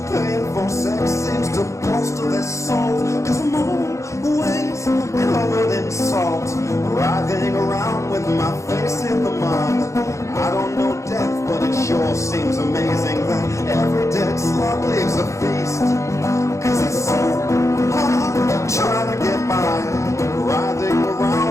paying for sex seems to bolster their soul. Cause I'm always covered in salt, writhing around with my face in the mud. I don't know death, but it sure seems amazing that every dead slug leaves a feast. Cause it's so hard trying to get by, writhing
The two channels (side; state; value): right; late; 0.15 ms